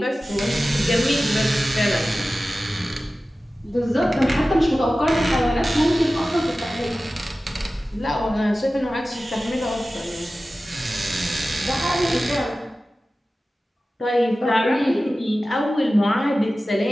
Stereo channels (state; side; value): normal; both; correlation 0.96